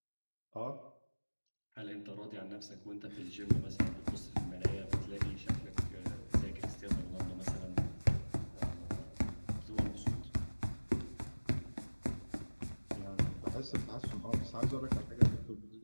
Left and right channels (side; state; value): both; inverted; correlation -1.00